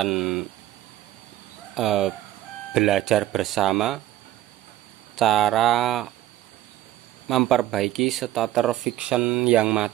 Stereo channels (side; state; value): left; quieter; 13.9 dB